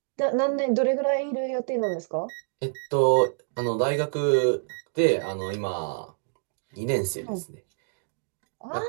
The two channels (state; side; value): silent; left; digital silence